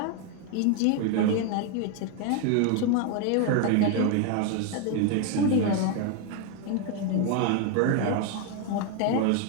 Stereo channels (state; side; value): different; both; correlation 0.01